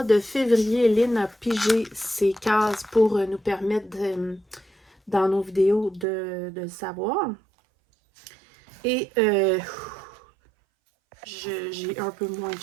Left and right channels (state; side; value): drops out; left; at 6.1 s